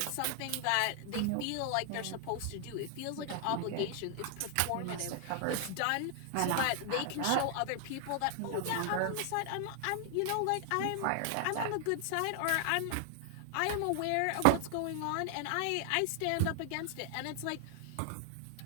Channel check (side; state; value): both; different; correlation 0.00